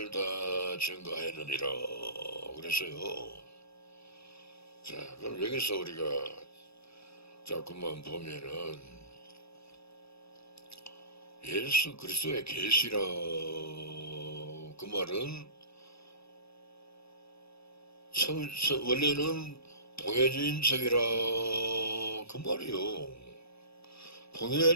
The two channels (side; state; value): right; late; 0.78 ms